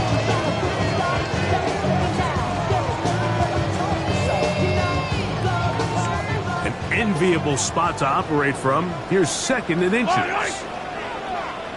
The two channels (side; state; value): both; identical; correlation 1.00